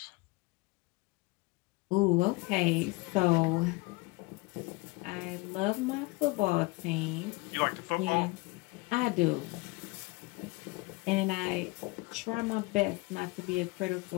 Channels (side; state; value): right; quieter; 24.6 dB